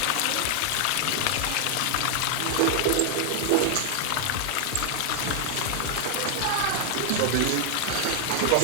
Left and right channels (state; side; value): different; both; correlation 0.00